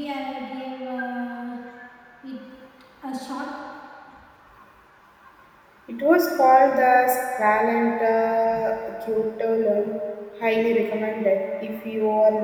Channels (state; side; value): identical; both; correlation 1.00